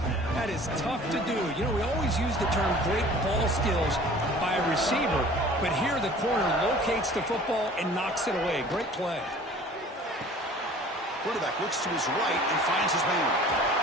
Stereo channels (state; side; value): normal; both; correlation 0.47